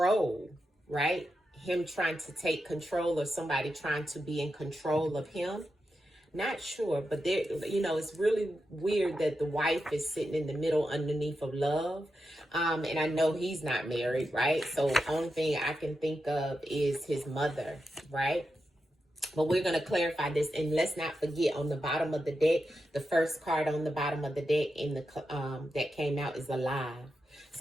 right? Him trying to take control or somebody trying to be in control of him. Not sure, but there, you know, it's really weird that the wife is sitting in the middle underneath of love. And I know he's not married, right? So only thing I can think of is his mother, right? But we're going to clarify this, and let's not forget, on the bottom of the deck, the first card on the bottom of the deck in the that came out is alive.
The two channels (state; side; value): normal; both; correlation 0.88